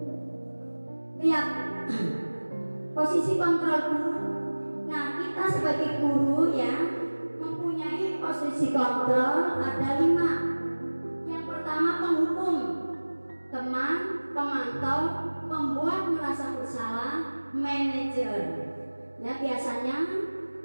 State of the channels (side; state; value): both; inverted; correlation -1.00